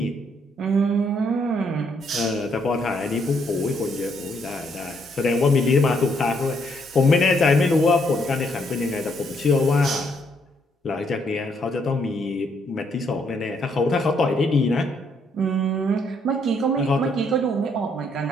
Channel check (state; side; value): normal; both; correlation 0.72